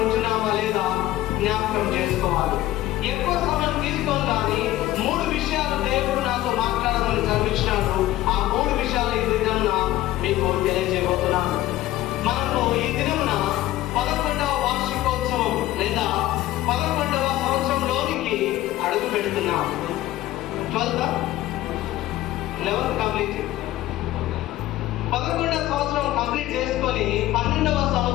ఉంటున్నామా లేదా జ్ఞాపకం చేసుకోవాలి. ఎక్కువ సమయం తీసుకోవాలి, కానీ 3 విషయాలు దేవుడు నాతో మాట్లాడమని చదివించినాడు. ఆ 3 విషయాలు ఈ దినమున మీకు తెలియజేయబోతున్నాను. మనము ఈ దినమున 11వ వార్షికోత్సవం లేదా 11వ సంవత్సరంలోనికి అడుగు పెడుతున్నాం. 11th కంప్లీట్, 11వ సంవత్సరం కంప్లీట్ చేసుకొని 12వ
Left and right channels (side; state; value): right; quieter; 15.3 dB